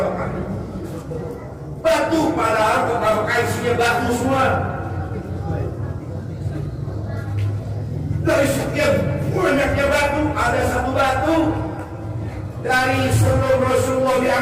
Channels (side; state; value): both; identical; correlation 1.00